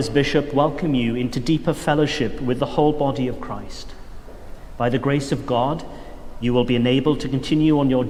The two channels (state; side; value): identical; both; correlation 1.00